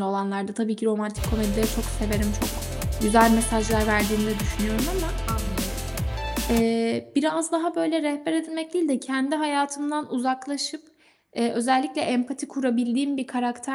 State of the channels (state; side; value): identical; both; correlation 1.00